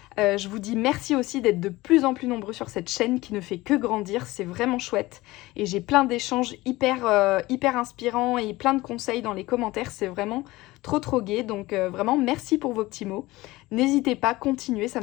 Je vous dis merci aussi d'être de plus en plus nombreux sur cette chaîne qui ne fait que grandir. C'est vraiment chouette. Et j'ai plein d'échanges hyper inspirants et plein de conseils dans les commentaires. C'est vraiment trop gai. Donc vraiment merci pour vos petits mots. N'hésitez pas, continuez, ça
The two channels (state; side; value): quieter; right; 19.4 dB